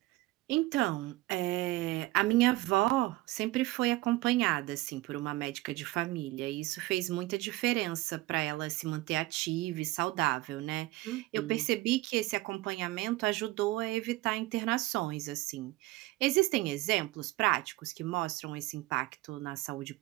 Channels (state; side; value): quieter; left; 19.4 dB